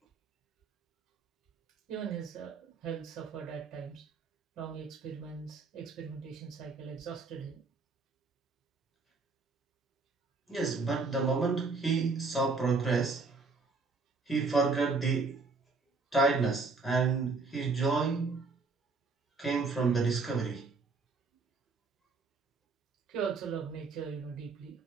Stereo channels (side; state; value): left; quieter; 4.1 dB